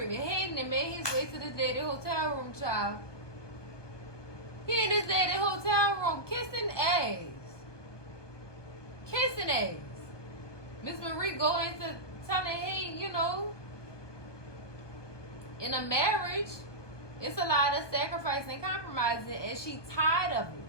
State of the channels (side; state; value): right; late; 1.2 ms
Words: Hayden had made his way to the daddy hotel room, child. He in his daddy hotel room kissing ass. Kissing ass. Miss Marie go into telling Hayden, in a marriage, it's a lot of sacrifice and compromising, and she tired of it.